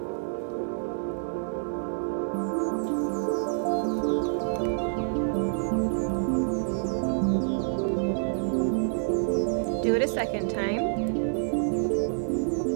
Do it a second time.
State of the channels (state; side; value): silent; left; digital silence